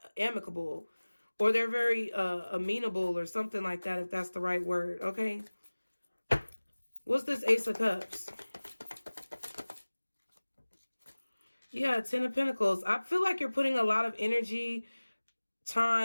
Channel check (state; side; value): inverted; both; correlation -1.00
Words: amicable, or they're very amenable, or something like that, if that's the right word. Okay. What's this Ace of Cups? Yeah, Ten of Pentacles. I feel like you're putting a lot of energy,